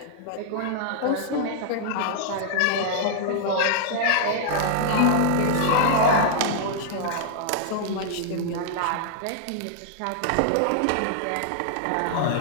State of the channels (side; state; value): both; different; correlation -0.01